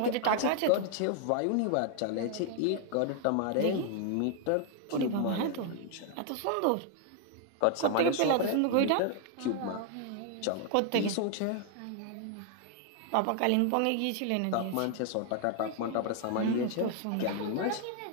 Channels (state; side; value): different; both; correlation 0.00